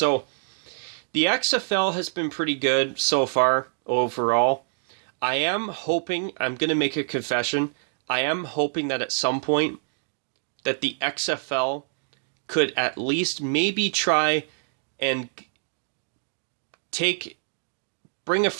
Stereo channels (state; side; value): silent; left; digital silence